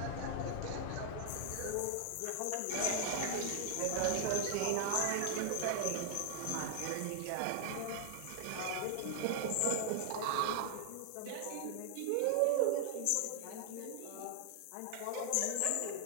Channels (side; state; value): both; different; correlation 0.00